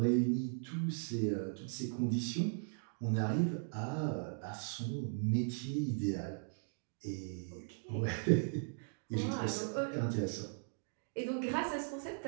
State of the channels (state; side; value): silent; left; digital silence